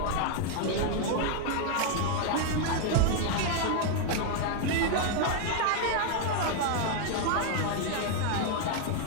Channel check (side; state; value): both; different; correlation 0.00